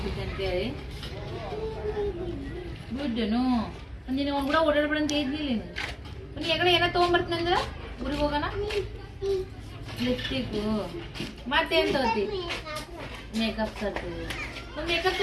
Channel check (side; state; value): both; identical; correlation 1.00